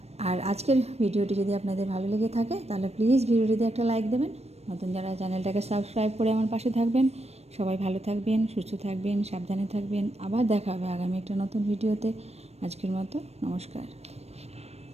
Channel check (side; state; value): left; late; 0.31 ms